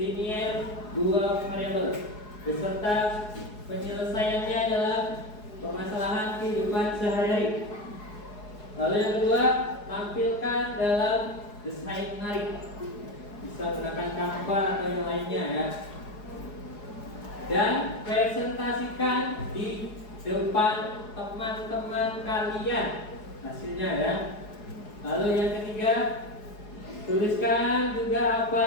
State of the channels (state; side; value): late; right; 4.8 ms